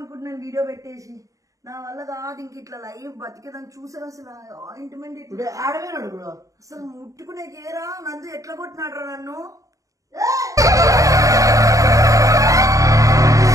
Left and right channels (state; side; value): late; left; 0.16 ms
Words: వీడియో పెట్టేసి. నా వల్ల కాదు ఇంక ఇట్లా లైఫ్ బతికేదాన్ని. చూసారు అసలు ఆయింట్మెంట్ ఆడవేనాడు కూడా అసలు ముట్టుకునే కేరా. నందు ఎట్లా కొట్టినాడు నన్ను.